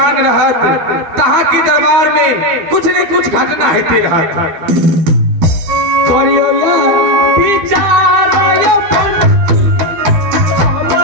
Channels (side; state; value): left; late; 13 ms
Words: रहत तहाँ के दरबार में कुछ न कुछ घटना होते रहत। करियो या विचार